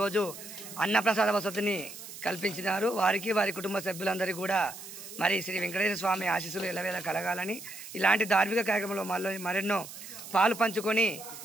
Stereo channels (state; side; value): noise; right; hiss, 13 dB below the sound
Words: అన్నప్రసాద వసతిని కల్పించినారు. వారికి వారి కుటుంబ సభ్యులందరికీ కూడా మరి శ్రీ వెంకటేశ్వర స్వామి ఆశీస్సులు ఎల్లవేళ కలగాలని, ఇలాంటి ధార్మిక కార్యక్రమంలో మరెన్నో పాలు పంచుకొని